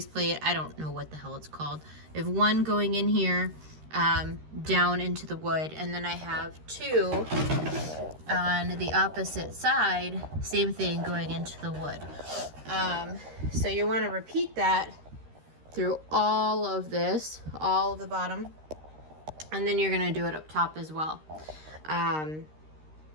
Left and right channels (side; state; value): left; late; 13 ms